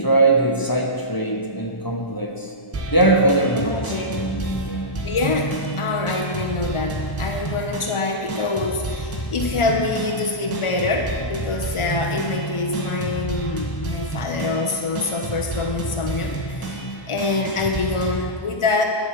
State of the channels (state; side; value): late; right; 1.4 ms